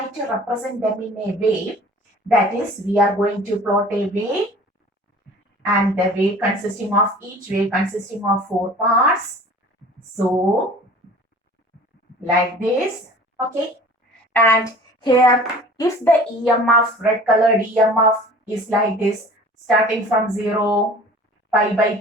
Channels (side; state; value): both; normal; correlation 0.45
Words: to represent them in a wave, that is, we are going to plot a wave, and the wave consisting of each wave consisting of 4 parts. So, like this, okay. And here, if the EMF, red colored EMF is like this, starting from 0, pi by